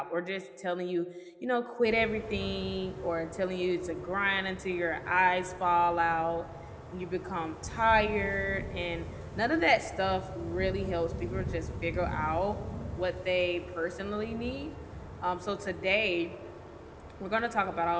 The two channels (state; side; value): identical; both; correlation 1.00